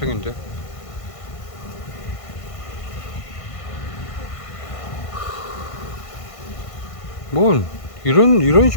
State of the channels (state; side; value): late; right; 1.5 ms